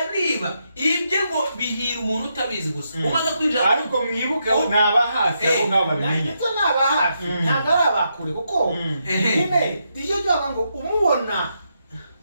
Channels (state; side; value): inverted; both; correlation -0.81